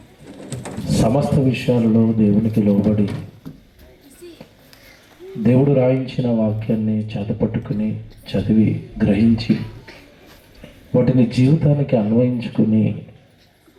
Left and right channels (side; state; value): both; identical; correlation 1.00